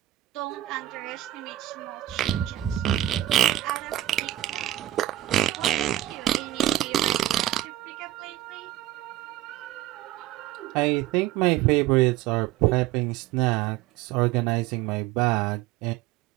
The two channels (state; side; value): quieter; left; 14.1 dB